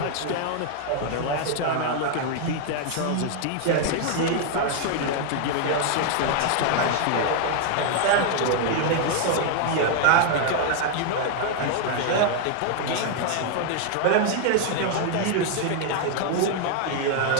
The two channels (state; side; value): different; both; correlation 0.00